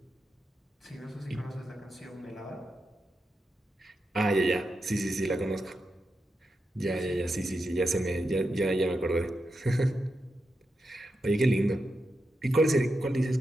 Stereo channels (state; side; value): normal; both; correlation 0.87